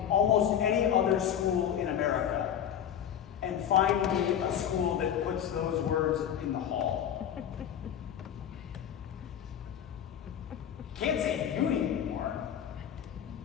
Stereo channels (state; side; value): quieter; right; 9.4 dB